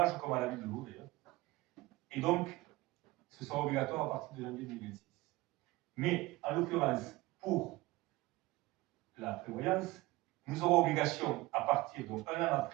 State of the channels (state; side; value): quieter; left; 19.9 dB